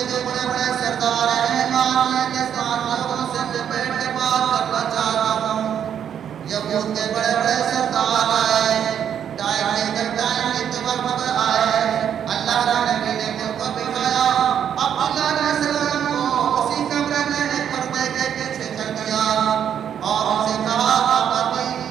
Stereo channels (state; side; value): quieter; left; 8.9 dB